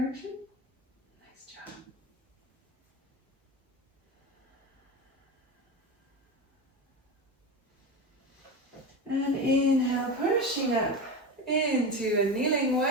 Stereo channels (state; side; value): normal; both; correlation 0.22